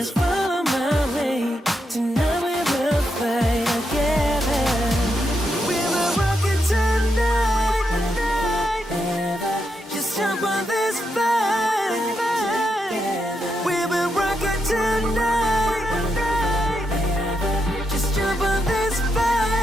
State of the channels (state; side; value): normal; both; correlation 0.82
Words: follow my way. Tonight we will fight together. We will rock it tonight. Just jump on this fight. We will rock it tonight. Just jump on this